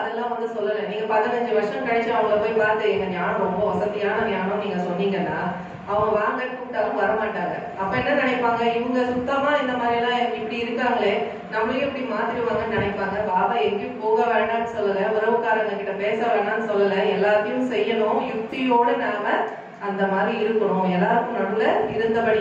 வந்து சொல்லல, நீங்க 15 வருஷம் கழிச்சு அவங்கள போய் பார்த்து எங்க ஞானம் ரொம்ப வசதியான ஞானம் நீங்க சொன்னீங்கன்னா அவங்க வாங்க கூப்பிட்டாலும் வரமாட்டாங்க। அப்ப என்ன நினைப்பாங்க, இவங்க சுத்தமா இந்த மாதிரி எல்லாம் இப்படி இருக்காங்களே, நம்மளையும் இப்படி மாத்திடுவாங்கன்னு நினைப்பாங்க। பாபா எங்கேயும் போக வேண்டாம்னு சொல்லல, உறவுக்காரங்க கிட்ட பேச வேண்டாம்னு சொல்லல, எல்லாத்தையும் செய்யணும், யுக்தியோடு நாம அந்த மாதிரி இருக்கணும், எல்லாருக்கும் நடுவுல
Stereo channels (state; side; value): identical; both; correlation 1.00